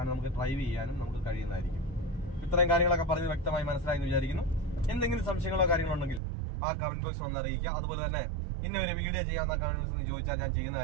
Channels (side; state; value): left; drops out; at 6.2 s